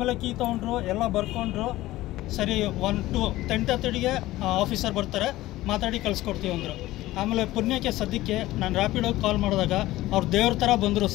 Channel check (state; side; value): quieter; right; 16.8 dB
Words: ಕೀ ತೊಗೊಂಡ್ರು, ಎಲ್ಲ ಬರ್ಕೊಂಡ್ರು. ಸರಿ, 10:30ಗೆ ಆಫೀಸರ್ ಬರ್ತಾರೆ, ಮಾತಾಡಿ ಕಳಿಸ್ಕೊಡ್ತೀವಿ ಅಂದರು. ಆಮೇಲೆ ಪುಣ್ಯಕ್ಕೆ ಸದ್ಯಕ್ಕೆ ನಾನು ರ್ಯಾಪಿಡೋಗಿ ಕಾಲ್ ಮಾಡಿದಾಗ ಅವ್ರು ದೇವ್ರ ಥರ ಬಂದರು